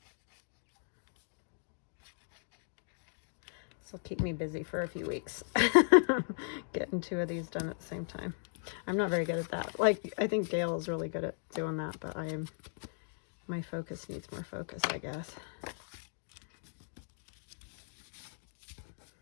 This will keep me busy for a few weeks. Getting 2 of these done at the same time. I'm not very good at that. Like, I think Gail is really good at doing that, but my focus needs more focus, I guess.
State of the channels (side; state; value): right; silent; digital silence